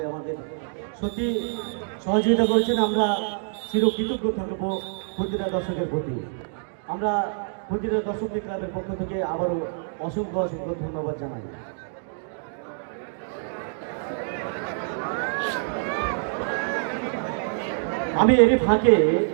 আমাদের সত্যি সহযোগিতা করেছেন, আমরা চিরকৃতজ্ঞ থাকবো প্রতিটা দর্শকের প্রতি। আমরা প্রতিটা দর্শকদের ক্লাবের পক্ষ থেকে আবারও অসংখ্য অসংখ্য ধন্যবাদ জানাই। আমি এরই ফাঁকে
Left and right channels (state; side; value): silent; left; digital silence